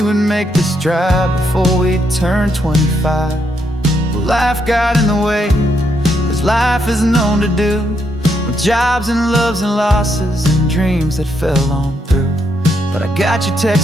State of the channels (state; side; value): normal; both; correlation 0.77